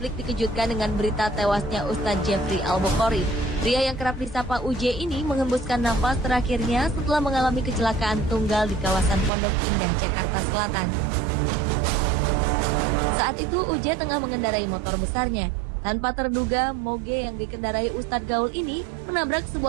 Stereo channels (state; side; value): drops out; left; at 9.3 s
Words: dikejutkan dengan berita tewasnya Ustadz Jeffrey Al-Bukhari. Pria yang kerap disapa UJ ini menghembuskan nafas terakhirnya setelah mengalami kecelakaan tunggal di kawasan Pondok Indah, Jakarta Selatan. Saat itu UJ tengah mengendarai motor besarnya. Tanpa terduga, moge yang dikendarai Ustadz Gaul ini menabrak